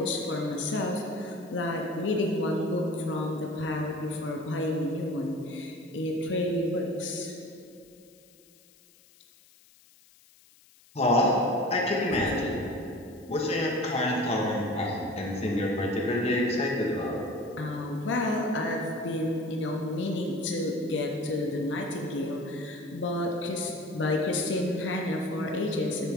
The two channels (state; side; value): noise; left; hiss, 28 dB below the sound